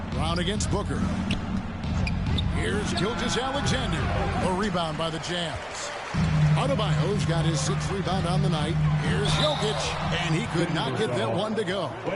Brown against Booker. Here's Gilgeous-Alexander. A rebound by the Jazz. Adebayo's got his 6th rebound on the night. Here's Jokic, and he could not get that one to go. A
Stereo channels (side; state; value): both; identical; correlation 1.00